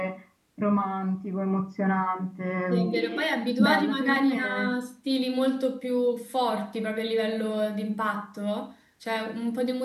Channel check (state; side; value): identical; both; correlation 1.00